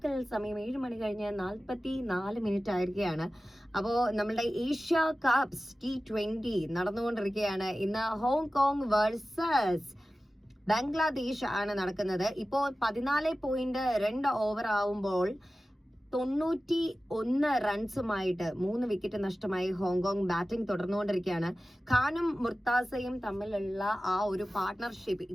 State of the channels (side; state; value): both; normal; correlation 0.95